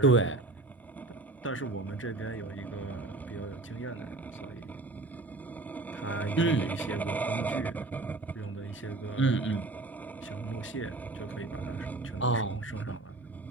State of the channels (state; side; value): quieter; left; 3.1 dB